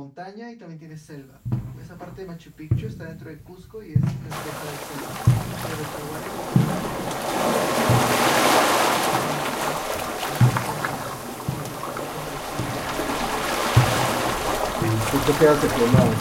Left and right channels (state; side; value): identical; both; correlation 1.00